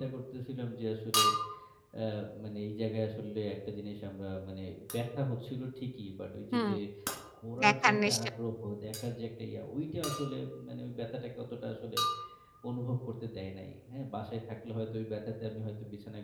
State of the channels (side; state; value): both; identical; correlation 1.00